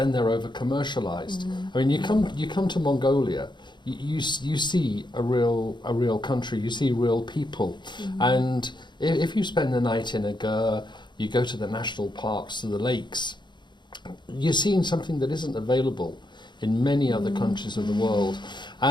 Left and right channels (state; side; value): late; right; 0.22 ms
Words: they're over-commercialized. I mean, you come to Mongolia, you see a real country, you see real people, and if you spend the night in a ger, you go to the national parks, to the lakes, you're seeing something that isn't available in many other countries of the world.